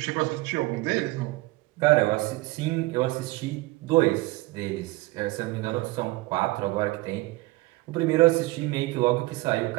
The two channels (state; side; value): quieter; left; 21.2 dB